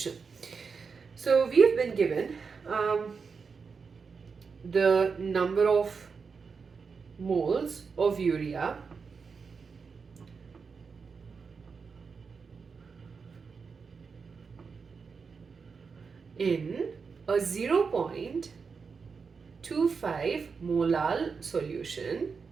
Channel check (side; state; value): left; quieter; 5.3 dB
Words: So, we have been given the number of moles of urea in a 0.25 molal solution